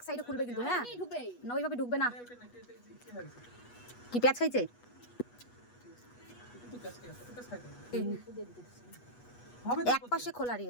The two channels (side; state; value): right; late; 8.2 ms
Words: সাইডে খুলবে কিন্তু, হ্যাঁ না ওইভাবে ঢুকবে না। কি পেঁয়াজ খাইছে? এক পাশে খোলা